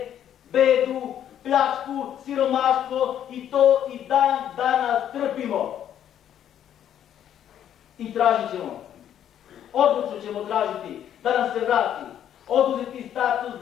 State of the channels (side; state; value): right; quieter; 10.2 dB